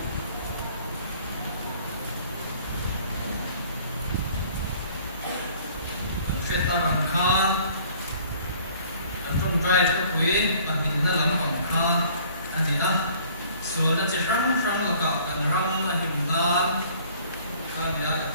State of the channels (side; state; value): both; inverted; correlation -0.55